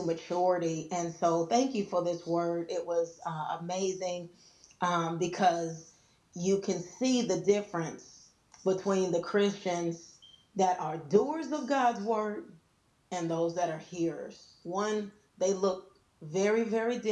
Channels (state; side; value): identical; both; correlation 1.00